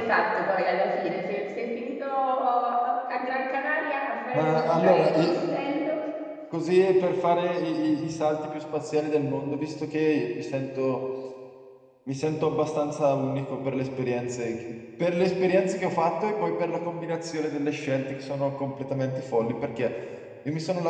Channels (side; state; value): both; identical; correlation 1.00